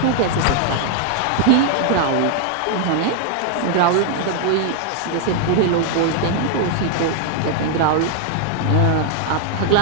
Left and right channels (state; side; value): different; both; correlation 0.00